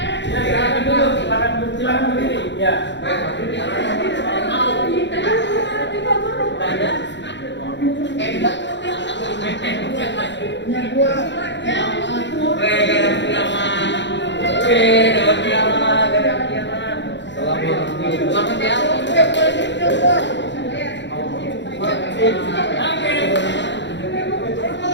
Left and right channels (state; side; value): late; right; 0.52 ms